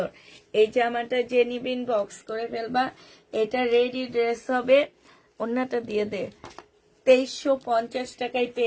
এই জামাটা যে নিবিন বক্স করে ফেলবা। এটা রেডি ড্রেস হবে। অন্যটা দিয়ে দে। 2350 টাকায়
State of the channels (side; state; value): both; identical; correlation 1.00